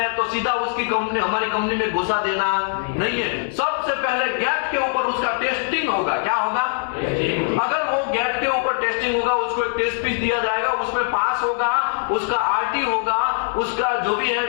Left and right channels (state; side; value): silent; right; 64 dB below the other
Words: तो सीधा उसकी कंपनी, हमारी कंपनी में घुसा देना नहीं है। सबसे पहले गेट के ऊपर उसका टेस्टिंग होगा। क्या होगा? अगर वो गेट के ऊपर टेस्टिंग होगा, उसको एक टेस्ट पीस दिया जाएगा, उसमें पास होगा, उसका आरटी होगा, उसका जो भी